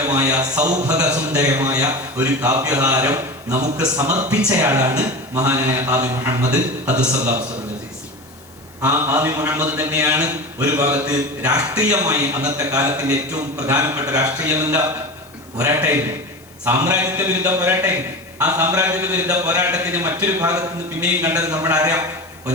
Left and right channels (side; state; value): left; noise; hiss, 26 dB below the sound